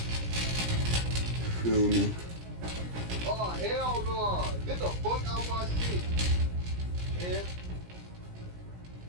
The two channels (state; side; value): late; left; 17 ms